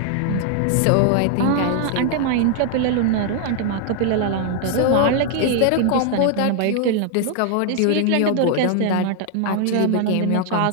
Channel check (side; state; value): both; different; correlation 0.00